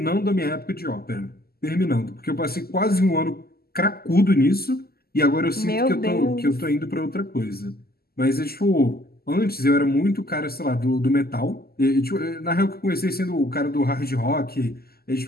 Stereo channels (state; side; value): late; right; 0.45 ms